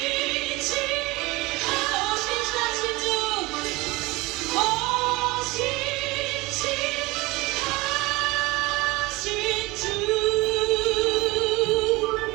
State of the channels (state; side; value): quieter; left; 22.2 dB